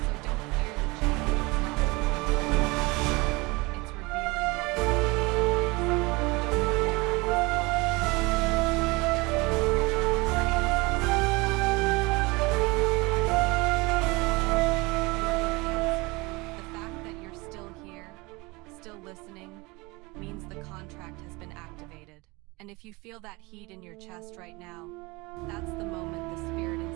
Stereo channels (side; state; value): left; quieter; 24.8 dB